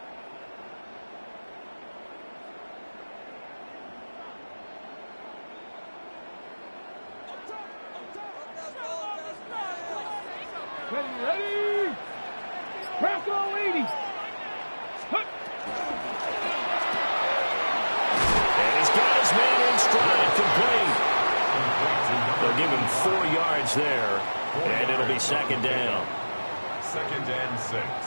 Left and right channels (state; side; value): inverted; both; correlation -1.00